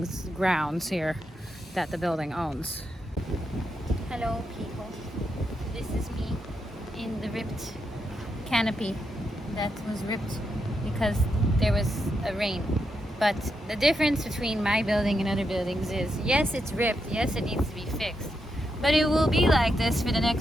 grounds here that the building owns. Hello, people. This is me in the ripped canopy that was ripped because there was a rain. But the difference between my building and other buildings is, yes, it's ripped, yes, it needs to be fixed, but it will be like this for the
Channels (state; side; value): normal; both; correlation 0.83